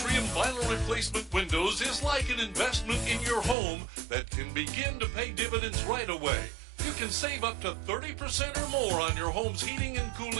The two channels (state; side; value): drops out; left; at 3.6 s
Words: vinyl replacement windows is like an investment in your home that can begin to pay dividends right away. You can save up to 30% or more on your home's heating and